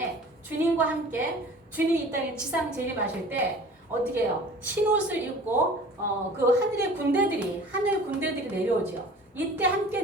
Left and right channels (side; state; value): both; normal; correlation 0.44